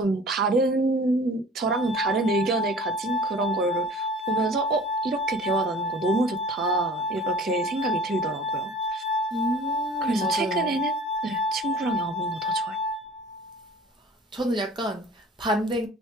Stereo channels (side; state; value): both; normal; correlation 0.45